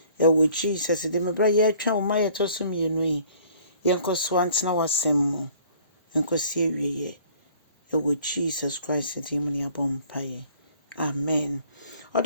ɛwɔ Jesus de me bra yɛatwa wo ma yɛtɔ so mmienu yi yɛnkɔso antena wasɛm mu nkɔsi awie ɛwɔ Jesus Christ de mu ne abɔ mpaeɛ amen.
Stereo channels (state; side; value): inverted; both; correlation -0.55